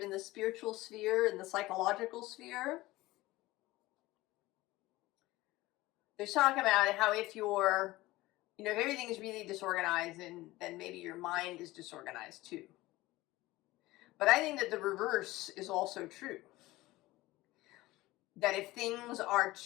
in the spiritual sphere and the psychological sphere, they talk about how if you're, you know, if everything is really disorganized, then maybe your mind is disorganized too. But I think that the reverse is also true. That if things are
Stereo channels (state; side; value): quieter; right; 18.6 dB